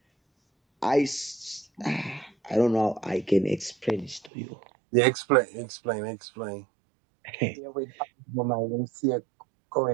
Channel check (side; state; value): left; drops out; at 4.3 s